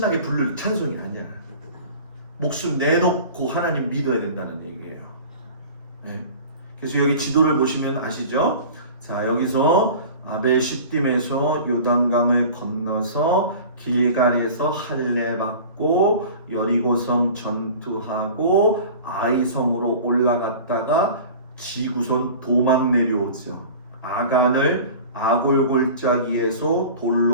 부를 찬송이 아니야. 목숨 내놓고 하나님 믿어야 된다는 얘기예요. 네. 그래서 여기 지도를 보시면 아시죠? 자, 여기서 아벨 시딤에서 요단강을 건너서 길갈에서 할례 받고 여리고성 전투하고 아이성으로 올라갔다가 지구선 도망 내려오죠. 아간을 아골골짜기에서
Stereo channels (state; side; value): inverted; both; correlation -0.40